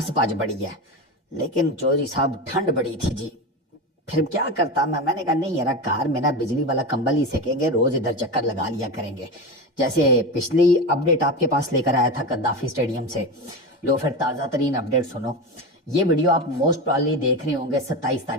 पाज बड़ी है। लेकिन चौधरी साहब ठंड बड़ी थी जी, फिर क्या करता मैंने कहा नहीं यार, कार में ना बिजली वाला कंबल ही सेकेंगे, रोज इधर चक्कर लगा लिया करेंगे। जैसे पिछली अपडेट आपके पास लेकर आया था कद्दाफी स्टेडियम से, लो फिर ताज़ा तरीन अपडेट सुनो। ये वीडियो आप मोस्ट प्रॉब्ली देख रहे होंगे 27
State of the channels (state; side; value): normal; both; correlation 0.22